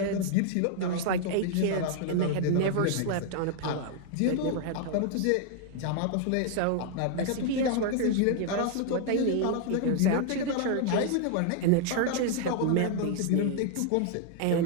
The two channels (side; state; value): both; different; correlation 0.00